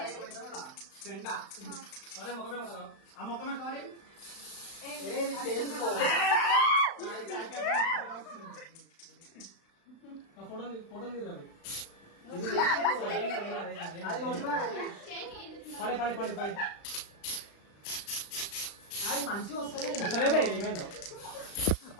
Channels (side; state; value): right; late; 35 ms